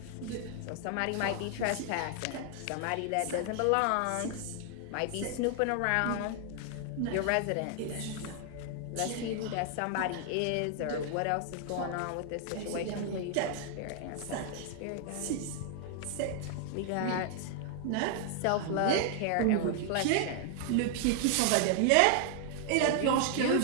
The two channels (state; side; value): different; both; correlation 0.00